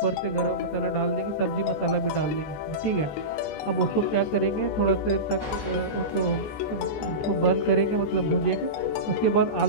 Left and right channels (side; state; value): right; late; 14 ms